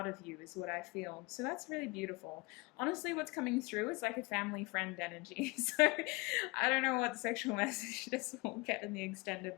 of you is what I feel. So that's really beautiful. Honestly, what's coming through is like a family friend energy. So I don't know what sexual message this will get in the extended,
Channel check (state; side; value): quieter; right; 25.4 dB